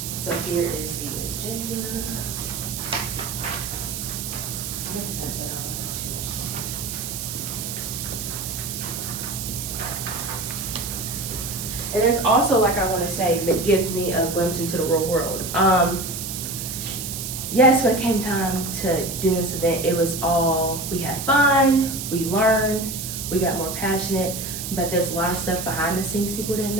So here is the agenda. And it's also, like I want to say, that gives me a glimpse into the real world. Yes, when it came time to doing this event, it was all, we had fun, we learned, we got more passionate, but there's a lot of stuff behind the scenes people didn't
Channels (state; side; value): noise; right; hiss, 6 dB below the sound